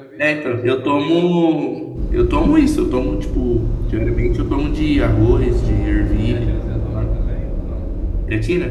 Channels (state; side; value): identical; both; correlation 1.00